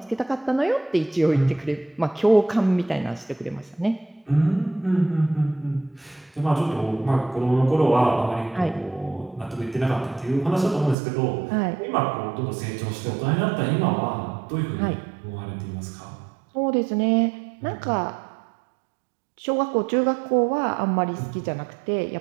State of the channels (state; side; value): drops out; left; at 11.0 s